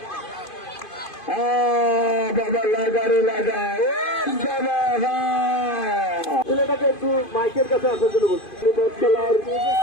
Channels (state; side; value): late; right; 2.5 ms